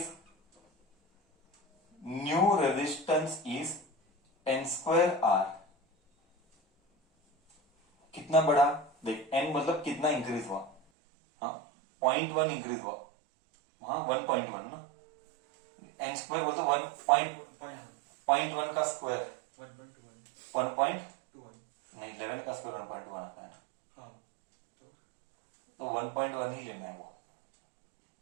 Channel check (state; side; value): drops out; left; at 10.8 s